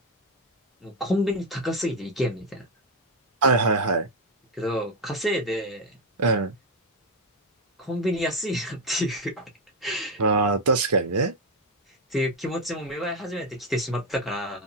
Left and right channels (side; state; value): both; normal; correlation 0.07